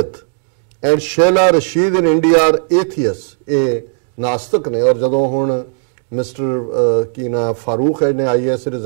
and Shehla Rashid in India are atheists, ਇਹ ਨਾਸਤਕ ਨੇ। ਔਰ ਜਦੋਂ ਹੁਣ ਮਿਸਟਰ ਕੀ ਨਾ ਫਾਰੂਕ ਹੈ ਨੇ IAS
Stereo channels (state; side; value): silent; left; 64 dB below the other